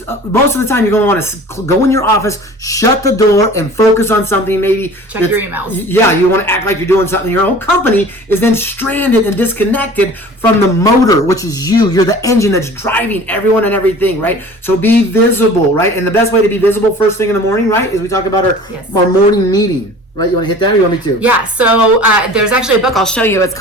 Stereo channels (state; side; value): normal; both; correlation 0.44